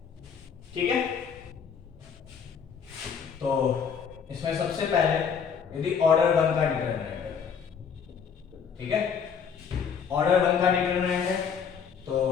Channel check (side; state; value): right; quieter; 6.8 dB